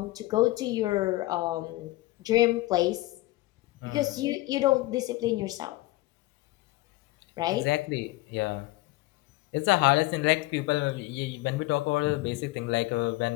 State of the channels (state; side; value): quieter; right; 19.2 dB